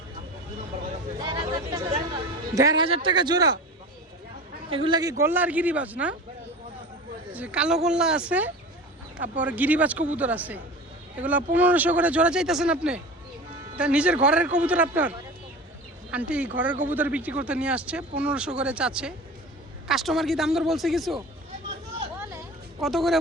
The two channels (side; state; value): both; normal; correlation 0.35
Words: 1500 টাকা জোড়া। এগুলা কি গোল্লা আর গিরিবাজ না? যে কালো গোল্লা আছে, তারপর গিরিবাজ কবুতর আছে। এগুলা 1500 করে জোড়া চাইতেছেন আপনি? তা নিজের ঘরের কবুতর আপনার? আন্টি ঘরের কবুতর বিক্রি করতে নিয়ে আসছে, 1500 করে চাচ্ছে। কাস্টমার কি দাম দর বলছে কিছু? কত করে